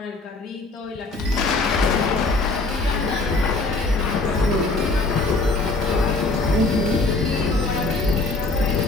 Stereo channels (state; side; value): quieter; right; 3.3 dB